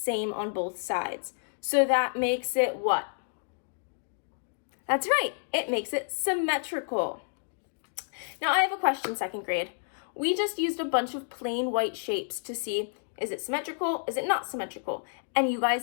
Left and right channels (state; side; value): silent; right; digital silence